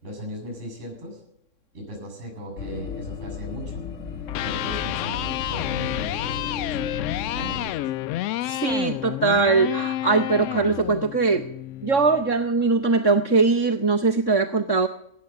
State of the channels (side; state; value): right; late; 3.6 ms